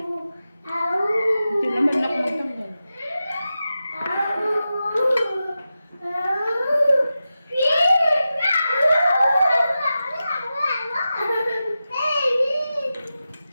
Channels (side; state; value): both; inverted; correlation -0.92